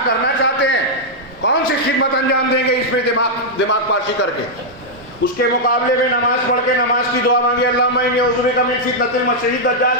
کرنا چاہتے ہیں؟ کون سی خدمت انجام دیں گے اس میں دماغ پاشی کر کے؟ اس کے مقابلے میں نماز پڑھ کے نماز کی دعا مانگی اللہم انی اعوذ بک من فتنۃ المسیح الدجال,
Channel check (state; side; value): normal; both; correlation -0.05